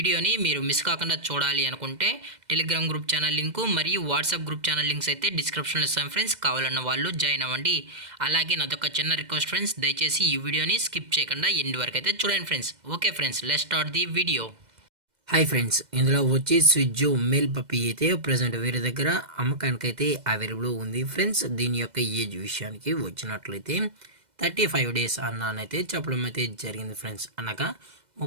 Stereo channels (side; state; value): left; late; 2.0 ms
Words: మీరు మిస్ కాకుండా చూడాలి అనుకుంటే టెలిగ్రామ్ గ్రూప్ ఛానల్ లింకు మరియు వాట్సాప్ గ్రూప్ ఛానల్ లింక్స్ అయితే డిస్క్రిప్షన్లో ఇస్తాను ఫ్రెండ్స్. కావాలన్న వాళ్ళు జాయిన్ అవ్వండి. అలాగే నాదొక చిన్న రిక్వెస్ట్ ఫ్రెండ్స్, దయచేసి ఈ వీడియోని స్కిప్ చేయకుండా ఎండ్ వరకు అయితే చూడండి friends. Okay friends, let's start the video. Hi friends, ఇందులో వచ్చి స్విజ్జు మేల్ పప్పీ అయితే ప్రజెంట్ వీరి దగ్గర అమ్మకానికైతే అవైలబుల్ ఉంది ఫ్రెండ్స్. దీని యొక్క ఏజ్ విషయానికి వచ్చినట్లయితే 35 డేస్ అన్నానైతే చెప్పడం అయితే జరిగింది ఫ్రెండ్స్. అనగా